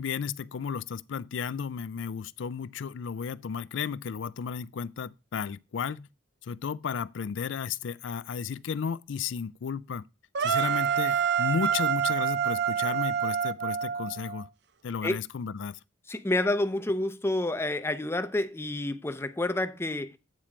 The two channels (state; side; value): normal; both; correlation 0.29